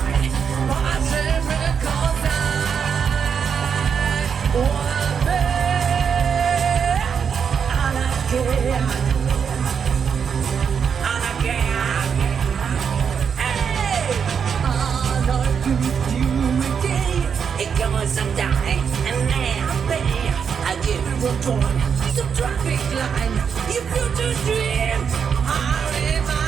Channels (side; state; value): left; quieter; 6.9 dB